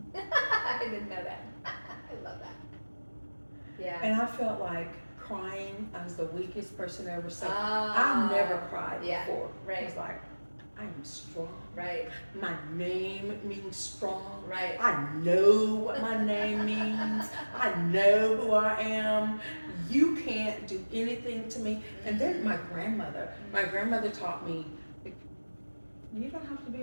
I didn't know that. I love that. Yeah. And I felt like crying, I was the weakest person ever. So Oh. I've never cried Yeah, before. right. I was like, I am strong. Right. My name means strong. Right. I know what my name means. I know who I am. You can't do anything to me. And then my grandmother taught me, you don't have to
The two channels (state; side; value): inverted; both; correlation -1.00